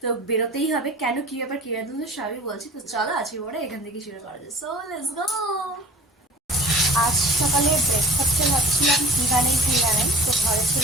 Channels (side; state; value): both; normal; correlation 0.45